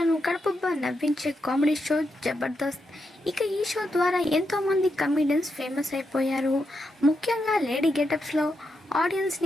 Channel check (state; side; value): normal; both; correlation 0.84